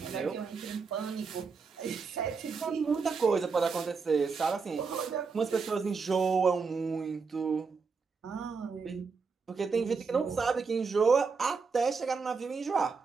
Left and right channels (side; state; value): left; quieter; 5.0 dB